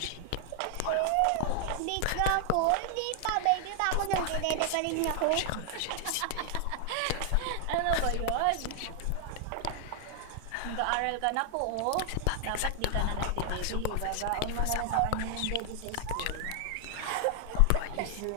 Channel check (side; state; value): both; different; correlation 0.00